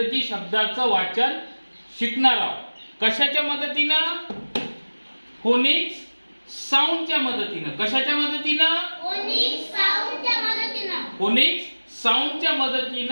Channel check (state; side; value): inverted; both; correlation -1.00